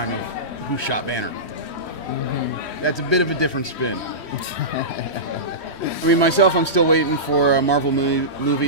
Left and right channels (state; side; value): late; right; 3.1 ms